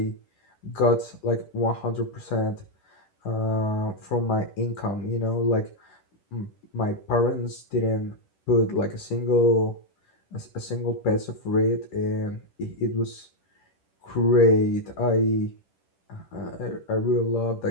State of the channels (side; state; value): right; late; 10 ms